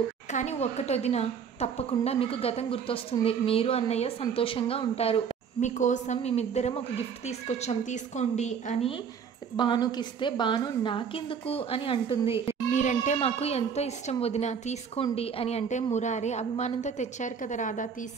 కానీ ఒక్కటొదిన తప్పకుండా మీకు గతం గుర్తొస్తుంది, మీరు అన్నయ్య సంతోషంగా ఉంటారు, మీకోసం మేమిద్దరం ఒక గిఫ్ట్ తీసుకొచ్చాం తీసుకోండి అని భానుకి ఇస్తే, భాను నాకెందుకు అని అంటుంది. మీరంటే మాకు ఎంతో ఇష్టం వదిన, తీసుకోండి అని అంటే, మురారి అభిమానంతో తెచ్చారు కదా రాధా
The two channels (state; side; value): quieter; left; 6.9 dB